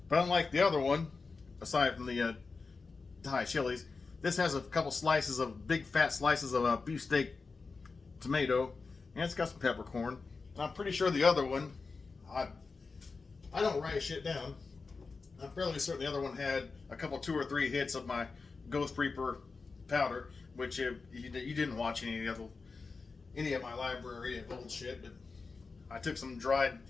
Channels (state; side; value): quieter; right; 4.4 dB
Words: But unlike the other one, aside from the Thai chilies, this has a couple slices of big fat slices of beefsteak tomato, and it's got some peppercorn. And I'm pretty sure the other one, I don't write shit down. I'm fairly certain the other one had a couple 2 or 3 hits of my Ghost Reaper powder, which you didn't watch any of my library of old shit, but I took some dried